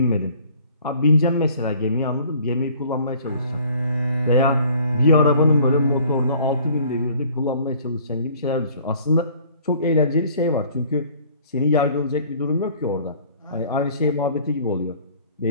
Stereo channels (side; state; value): both; inverted; correlation -0.54